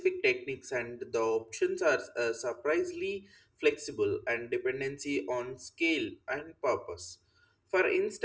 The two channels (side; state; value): both; identical; correlation 1.00